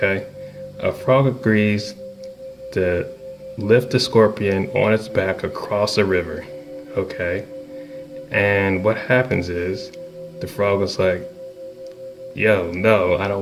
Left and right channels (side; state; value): both; identical; correlation 1.00